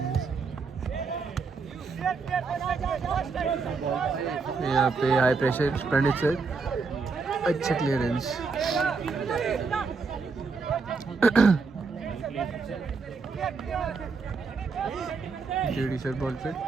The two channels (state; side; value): quieter; left; 4.7 dB